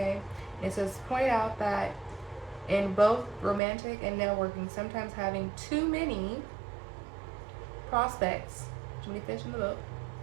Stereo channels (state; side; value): drops out; left; at 3.6 s